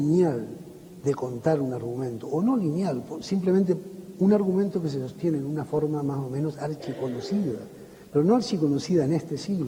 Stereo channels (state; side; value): identical; both; correlation 1.00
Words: de contar un argumento, o no lineal, simplemente un argumento que se sostiene en una forma más o menos archiconocida, pero no archiconocida en este